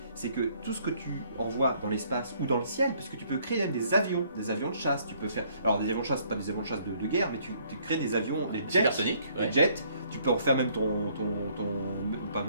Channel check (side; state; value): both; inverted; correlation -0.64